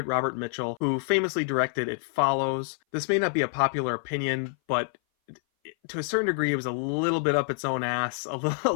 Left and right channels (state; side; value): silent; right; 58 dB below the other